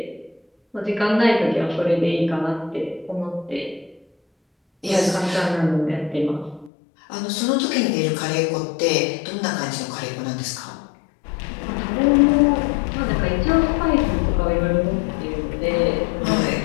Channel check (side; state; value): right; drops out; at 6.7 s